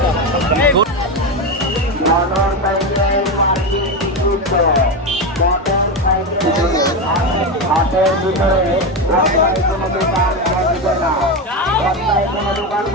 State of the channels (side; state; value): both; normal; correlation 0.14